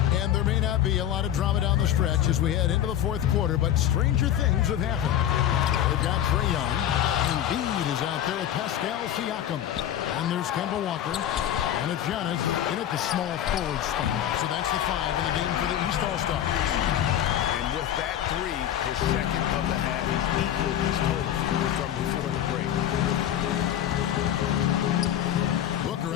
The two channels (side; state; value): right; quieter; 11.0 dB